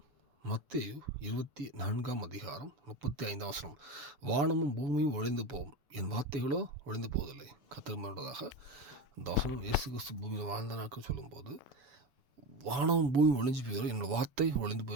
மத்தேயு 24 அதிகாரம் 35 வசனம். வானமும் பூமியும் ஒழிந்து போகும், என் வார்த்தைகளோ ஒழிந்து போவதில்லை. கர்த்தர் வாழ்ந்ததாக இந்த வசனம் இயேசு கிறிஸ்து பூமியில் வாழ்ந்த நாட்கள் சொல்லும்போது வானமும் பூமியும் ஒழிஞ்சு போயிடும், என்னோடய வார்த்தை ஒழிந்து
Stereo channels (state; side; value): late; left; 7.1 ms